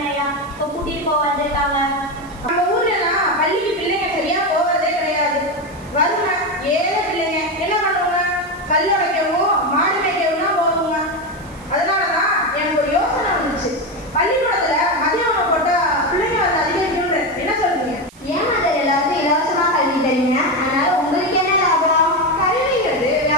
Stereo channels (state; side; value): noise; right; hiss, 25 dB below the sound